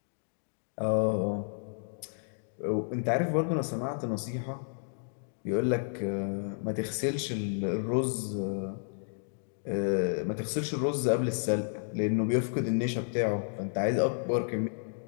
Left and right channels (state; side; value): silent; right; digital silence